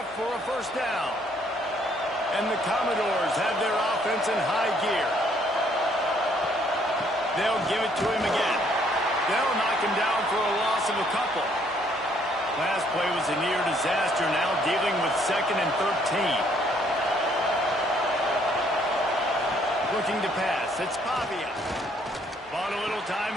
for a first down. And the Commodores have their offense in high gear. They'll give it to him again. They'll knock him down for a loss of a couple. Last play was a near disaster, now dealing with 2nd and 13. Looking to pass, it's Pavia. Bought a little time,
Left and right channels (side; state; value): both; normal; correlation 0.66